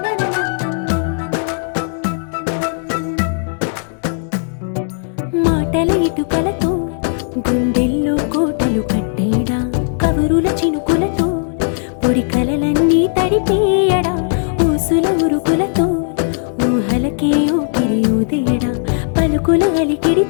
మాటల ఇటుకలతో గుండెల్లో కోటలు కట్టేడా కవురుల చినుకులతో పొడి కలలన్నీ తడిపేయడా ఊసుల ఉరుకులతో ఊహలకే ఊపిరి ఊదేయడా పలుకుల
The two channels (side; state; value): right; silent; 68 dB below the other